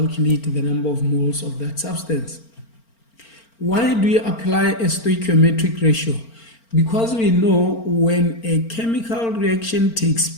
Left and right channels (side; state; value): right; late; 4.4 ms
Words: the number of moles of that substance. Why do you apply a stoichiometric ratio? Because we know when a chemical reaction takes